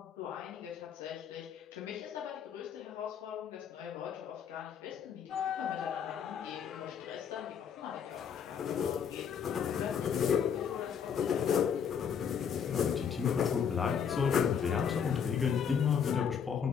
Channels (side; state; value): right; quieter; 7.4 dB